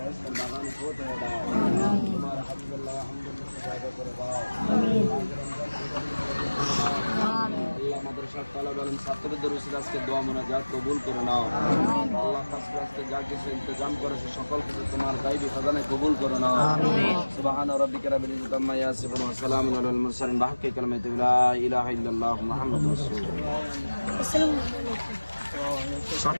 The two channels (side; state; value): both; inverted; correlation -1.00